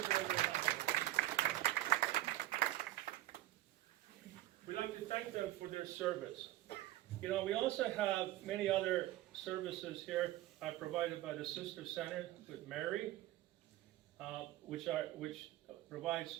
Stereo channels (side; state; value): left; quieter; 15.5 dB